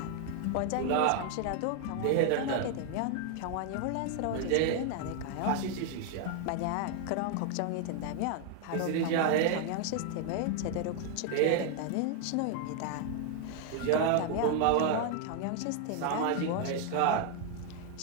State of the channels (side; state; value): both; different; correlation 0.00